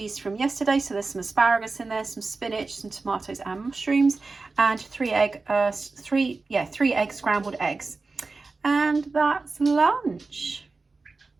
from yesterday. So there's some asparagus in there, some spinach, some tomatoes and mushrooms, and 3 egg scrambled eggs. And that's lunch.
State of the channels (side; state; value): left; quieter; 3.9 dB